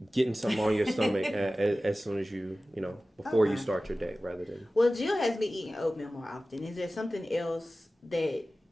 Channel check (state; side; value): normal; both; correlation 0.96